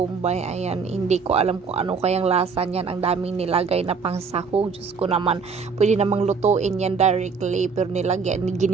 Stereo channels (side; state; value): left; quieter; 5.3 dB